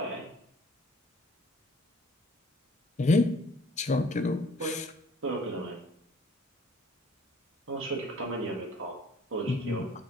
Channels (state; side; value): normal; both; correlation 0.56